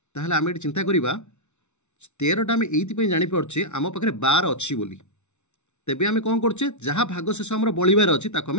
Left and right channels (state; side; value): late; right; 0.82 ms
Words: ताहले आम ये चिंता करवा 13टा आम ये जापारे आम पाखे 12 अच्छी बोली तेबे आम कौन करचे जहाँ भागशेष आम बलिबार अच्छी